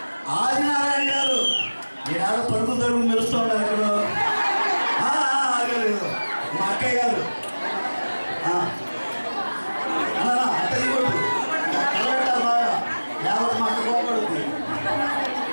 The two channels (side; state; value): both; inverted; correlation -1.00